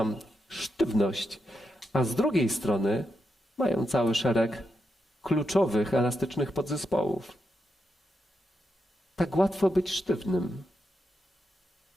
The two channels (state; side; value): normal; both; correlation 0.85